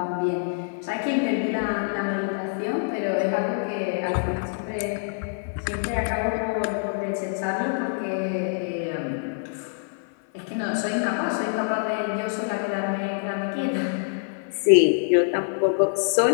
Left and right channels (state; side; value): silent; right; 55 dB below the other